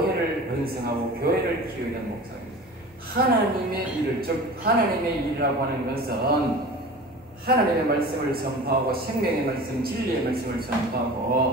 번성하고 교회를 키우기 위한 목사입니다. 하나님의 일을, 즉 하나님의 일이라고 하는 것은 하나님의 말씀을 선포하고 생명의 말씀, 진리의 말씀을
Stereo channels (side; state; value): both; normal; correlation 0.37